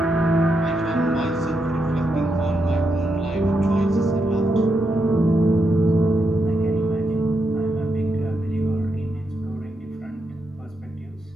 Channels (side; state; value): both; normal; correlation 0.83